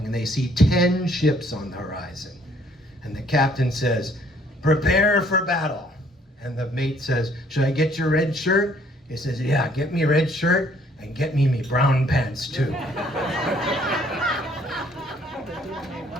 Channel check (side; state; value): both; normal; correlation 0.62